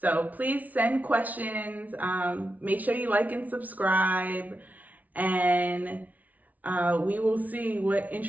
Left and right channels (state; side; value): late; left; 0.075 ms